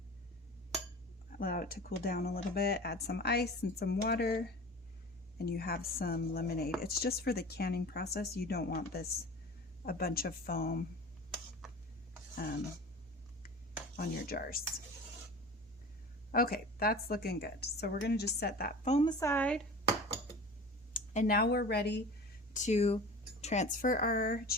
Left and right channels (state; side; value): normal; both; correlation 0.37